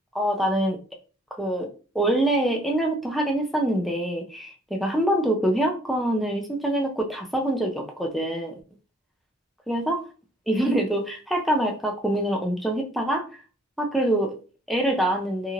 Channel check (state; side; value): normal; both; correlation 0.62